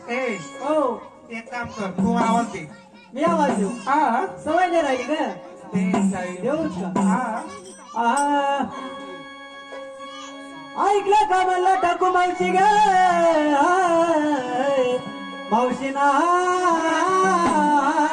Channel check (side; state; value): both; identical; correlation 1.00